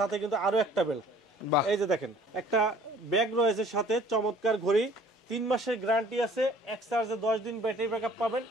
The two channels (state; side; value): normal; both; correlation 0.54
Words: কিন্তু আরো একটা বেল্ট। বাহ। এই যে দেখেন একটা ব্যাগ রয়েছে সাথে, চমৎকার ঘড়ি, 3 মাসের গ্যারান্টি আছে, এক চার্জে 10 দিন ব্যাটারি ব্যাকআপ পাবেন,